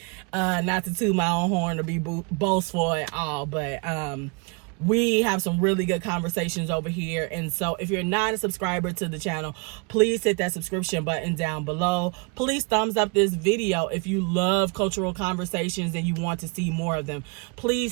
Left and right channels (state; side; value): quieter; left; 31.9 dB